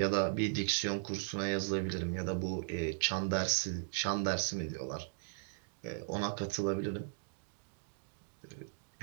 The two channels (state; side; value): silent; left; digital silence